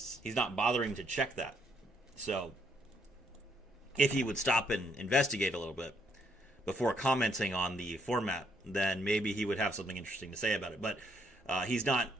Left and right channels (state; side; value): normal; both; correlation 0.71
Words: He's not bothering to check that. So, if he would stop and investigate a little bit before commenting on the format, then maybe he would have something interesting to say about it. But he's not.